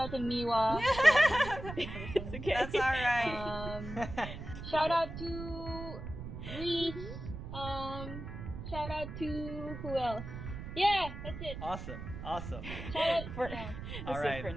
to Miwa. It's okay. That's alright. Shout out to Reese. Shout out to who else? Yeah, that's it. Awesome. Shout out, For, yeah. that's All it right. for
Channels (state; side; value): noise; right; rumble, 9 dB below the sound